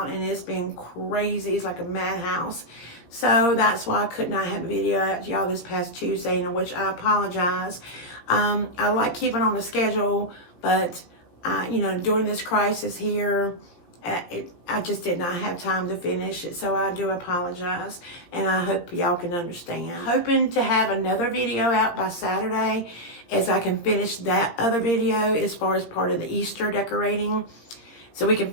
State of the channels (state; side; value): late; right; 17 ms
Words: and it's been crazy. It's like a madhouse. So that's why I could not have a video out to y'all this past Tuesday, in which I apologize. I like keeping on the schedule, but you know, during this crisis here, I just did not have time to finish it, so I do apologize, and I hope y'all can understand. Hoping to have another video out by Saturday, as I can finish that other video as far as part of the Easter decorating, so we can